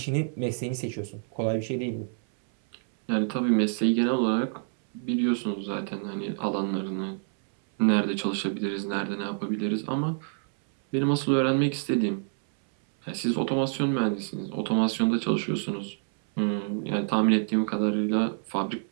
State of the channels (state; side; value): silent; left; 60 dB below the other